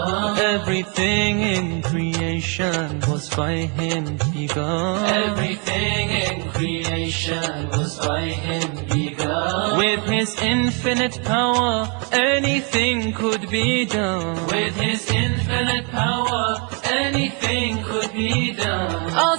Everything in creation was by Him begun. Everything in creation was by Him begun. With His infinite power, anything could be done. With His infinite power, anything could be done.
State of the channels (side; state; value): left; quieter; 36.0 dB